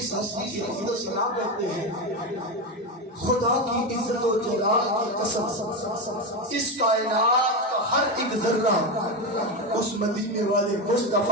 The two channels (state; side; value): normal; both; correlation 0.14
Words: ہستی کی حمد و ثنا کرتے ہیں خدا کی عزت و جلال کی قسم اس کائنات کا ہر ایک ذرہ اس مدینے والے